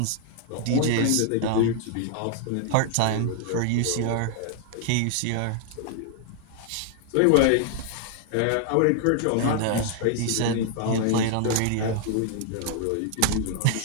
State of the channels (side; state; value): both; different; correlation 0.00